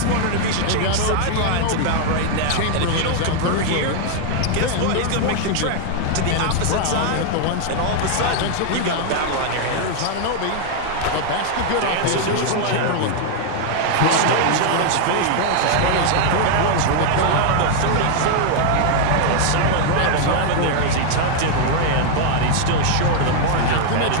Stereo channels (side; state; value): both; different; correlation 0.00